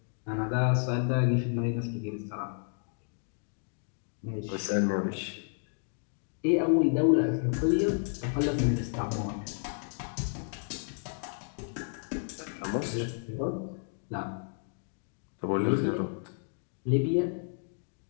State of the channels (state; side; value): silent; right; 55 dB below the other